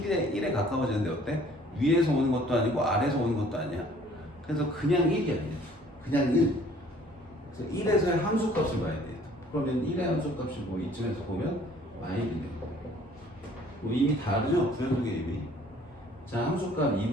가까워지는데 어때? 위에서 오는 것도 아니고 아래에서 오는 것도 아니야. 그래서 그냥 1이야. 그냥 1. 그래서 1에서의 함수값을 봐야 돼. 그러면 1의 함수값이 뭐 이쯤에서 보면 마일이네. 뭐 이미 다르죠? 부연속의 이미. 자 함수값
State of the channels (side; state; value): both; normal; correlation 0.56